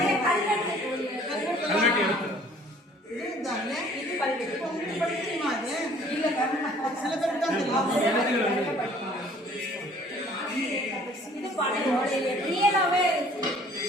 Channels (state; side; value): normal; both; correlation 0.55